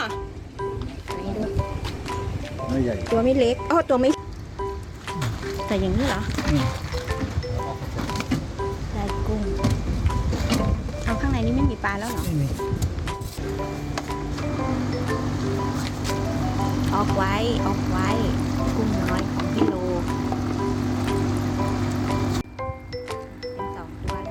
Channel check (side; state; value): both; identical; correlation 1.00